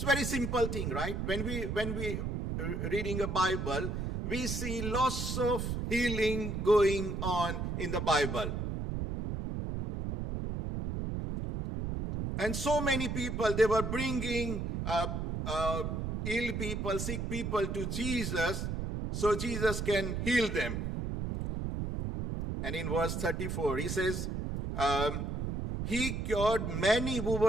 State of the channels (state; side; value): noise; right; rumble, 2 dB below the sound